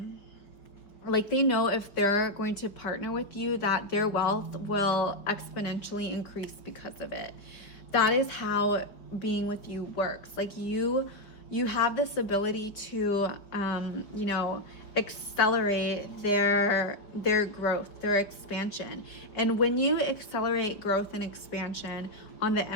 like they know if they're going to partner with you, that their wealth will exponentially increase because of it. That is how being with you works. Like you have this ability to, accelerate their growth, their expansion. And when you accelerate growth and expansion on the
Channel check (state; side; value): late; right; 4.9 ms